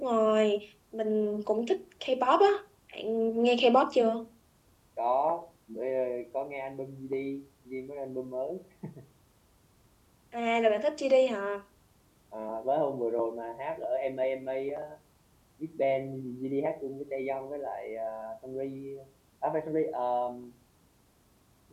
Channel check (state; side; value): identical; both; correlation 1.00